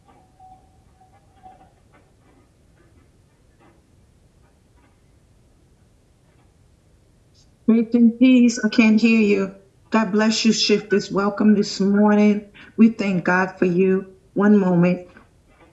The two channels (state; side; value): identical; both; correlation 1.00